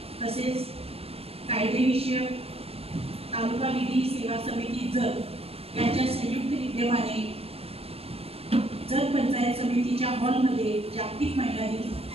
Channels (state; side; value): late; left; 0.29 ms